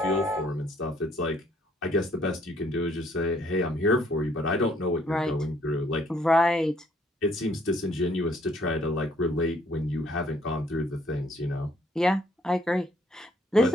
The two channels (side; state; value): both; normal; correlation 0.65